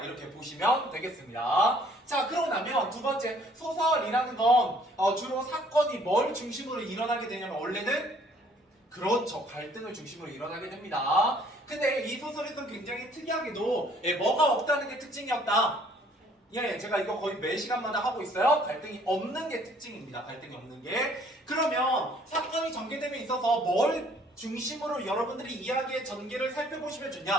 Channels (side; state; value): both; normal; correlation 0.60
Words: 이렇게 보시면 되겠습니다. 자, 그러고 나면 두 번째 소설이라는 건 주로 사건이 뭘 중심으로 일어나게 되냐면 원래는 그렇죠. 갈등을 중심으로 일어나게 됩니다. 근데 이 소설에서는 굉장히 특이하게도 뭐가 없다는 게 특징이었다. 제가 이거 거의 매 시간마다 하고 있어요. 갈등이 없는 게 특징입니다. 갈등이 없는 게. 그러면 사건이 전개됨에 있어서 뭘 중심으로 여러분들이 이야기의 전개를 살펴보시면